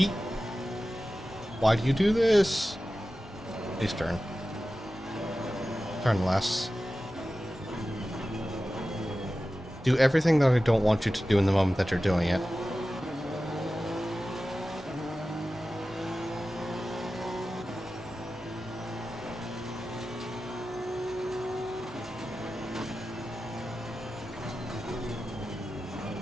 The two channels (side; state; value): both; normal; correlation 0.94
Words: Why do you do this? Please turn. Turn less. Do everything that I don't want you to do in the moment that you're doing it.